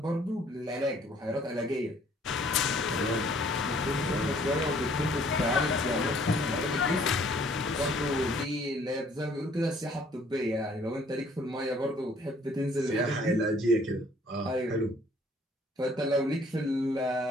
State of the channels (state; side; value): normal; both; correlation 0.60